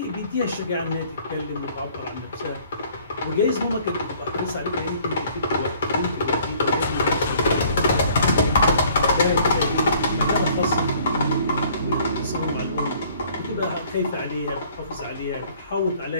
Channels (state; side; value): inverted; both; correlation -0.57